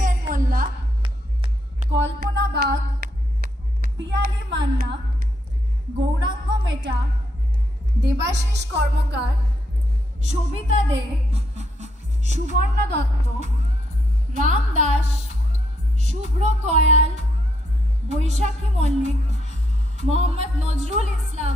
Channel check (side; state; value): both; normal; correlation 0.76